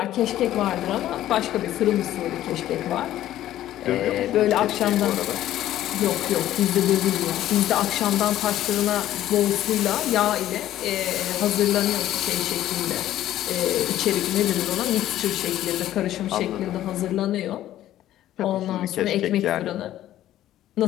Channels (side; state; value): right; quieter; 13.1 dB